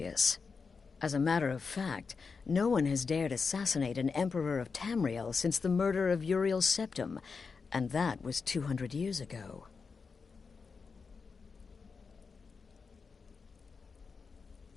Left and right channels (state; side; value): quieter; right; 5.0 dB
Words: As a matter of fact, no one has dared assassinate an Emperor of Tamriel since the murder of Uriel Septim, and that was 200 years ago.